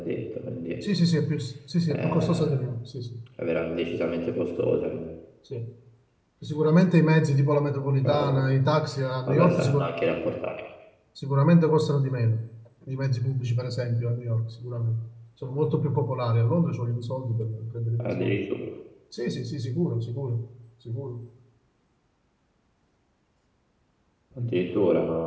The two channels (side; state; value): both; identical; correlation 1.00